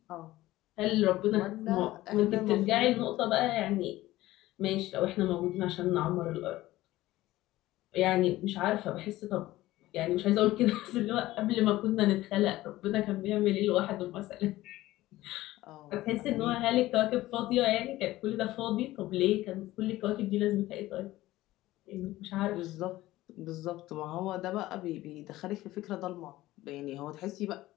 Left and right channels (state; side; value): quieter; right; 16.6 dB